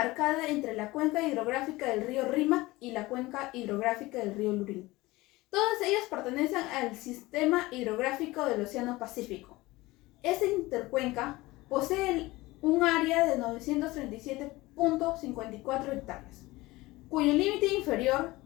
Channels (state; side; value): quieter; right; 20.1 dB